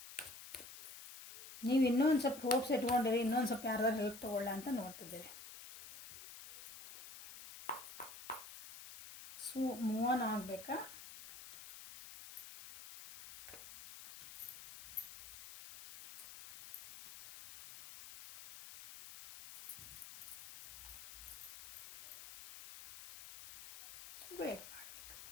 ನೀವು ಇನ್ನೂ ಒಂದು ಸ್ವಲ್ಪ ಹೋಪ್ಸ್ ಇಟ್ಕೊಂಡಿರಿ, ಇನ್ನೊಂದು ಸ್ವಲ್ಪ ಯಾರ್ದಾರು ಹೆಲ್ಪ್ ತೊಗೊಳ್ಳ ಅಂತ ನೋಡ್ತಿದ್ದೀರಿ. ಸೊ ಮೂವ್ ಆನ್ ಆಗಬೇಕಾ?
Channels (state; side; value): noise; left; hiss, 13 dB below the sound